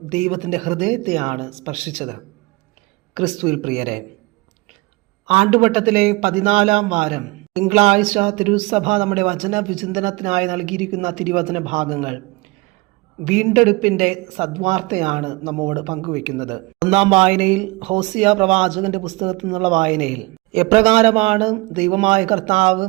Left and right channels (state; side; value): quieter; left; 24.0 dB